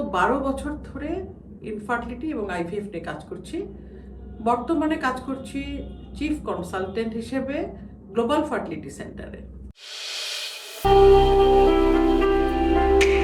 12 বছর ধরে ইনফার্টিলিটি এবং আইভিএফ নিয়ে কাজ করছি। বর্তমানে কাজ করছি চিফ কনসালটেন্ট হিসেবে গ্লোবাল ফার্টিলিটি সেন্টারে।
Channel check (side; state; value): both; identical; correlation 1.00